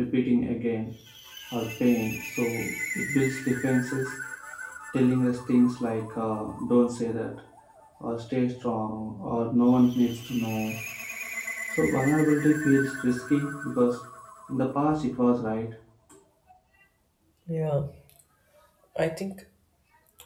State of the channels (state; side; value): identical; both; correlation 1.00